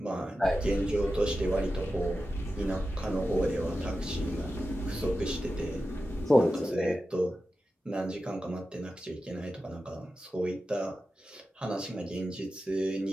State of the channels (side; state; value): both; normal; correlation 0.92